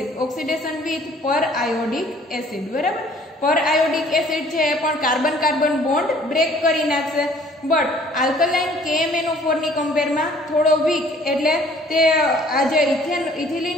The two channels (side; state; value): both; normal; correlation 0.56